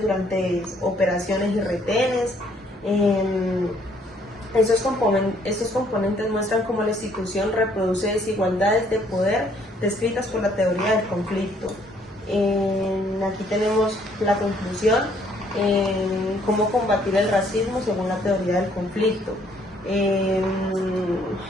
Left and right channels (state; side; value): normal; both; correlation 0.65